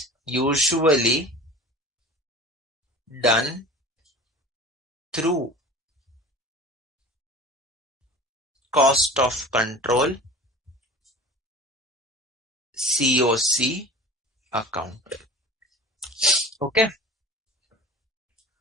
usually done through cost of control COC account. Okay.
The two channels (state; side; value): normal; both; correlation 0.38